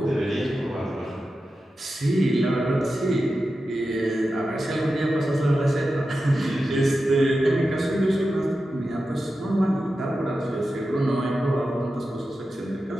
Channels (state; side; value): normal; both; correlation 0.91